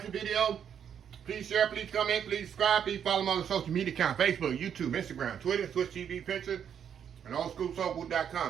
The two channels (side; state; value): left; quieter; 8.4 dB